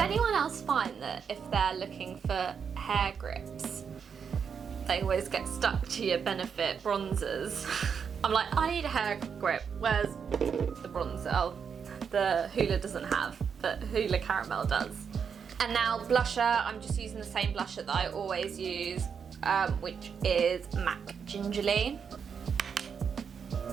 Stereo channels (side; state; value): left; quieter; 6.7 dB